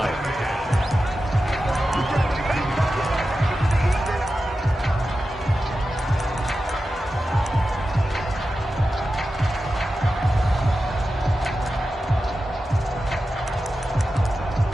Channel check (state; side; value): normal; both; correlation 0.92